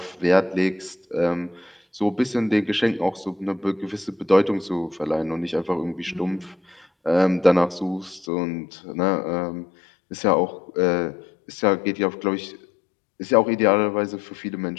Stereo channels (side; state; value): right; drops out; at 8.2 s